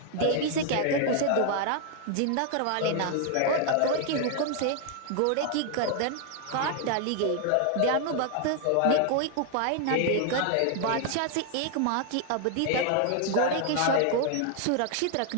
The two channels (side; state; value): both; different; correlation 0.00